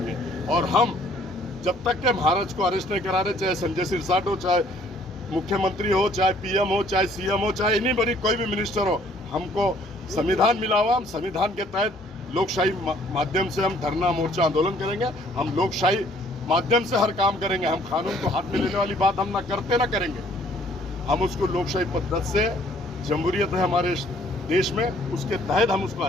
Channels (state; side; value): normal; both; correlation 0.60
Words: और हम जब तक के महाराज को अरेस्ट नहीं करा रहे, चाहे संजय सिरसाट हो, चाहे मुख्यमंत्री हो, चाहे पीएम हो, चाहे सीएम हो, चाहे इन्हीं बड़ी कोई भी मिनिस्टर हो, हमको संविधान मिला हुआ, हम संविधान के तहत लोकशाही माध्यम से हम धरना, मोर्चा, आंदोलन करेंगे। हम लोकशाही माध्यम से हर काम करेंगे। हम कानून को हाथ में लेने वाली बात हम ना करते ना करेंगे। हम उसको लोकशाही पद्धति से, जमहूरियत है हमारे देश में, उसके तहत हम उसको